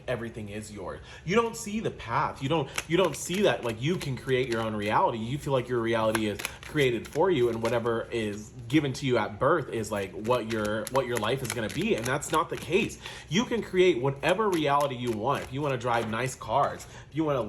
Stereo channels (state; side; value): identical; both; correlation 1.00